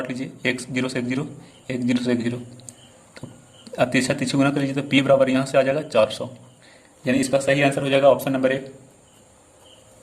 लीजिए, 1 0 से 1 0, 1 0 से 1 0, तो अब तीसरा गुना कर लीजिए तो P बराबर यहाँ से आ जाएगा 400, यानी इसका सही आंसर हो जाएगा ऑप्शन नंबर 1।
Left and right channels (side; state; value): both; identical; correlation 1.00